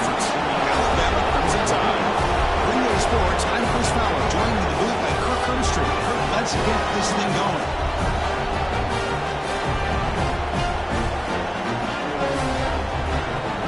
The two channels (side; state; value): both; identical; correlation 1.00